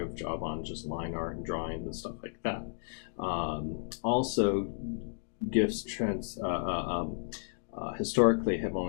of a job on just line art and drawings and stuff like that. Also, GIFs historically have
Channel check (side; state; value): right; silent; digital silence